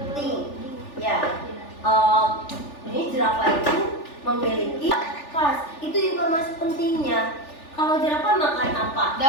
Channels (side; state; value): right; late; 3.4 ms